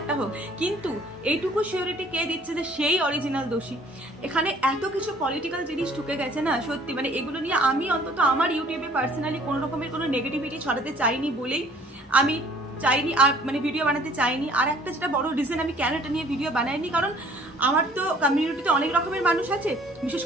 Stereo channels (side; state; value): both; normal; correlation 0.56